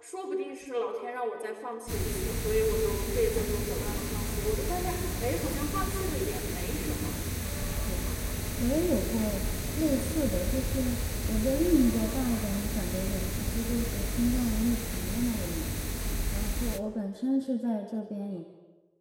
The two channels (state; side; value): identical; both; correlation 1.00